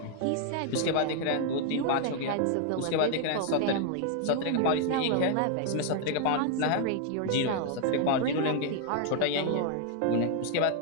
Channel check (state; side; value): different; both; correlation 0.00